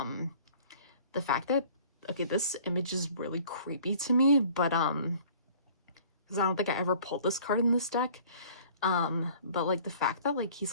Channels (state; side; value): inverted; both; correlation -0.51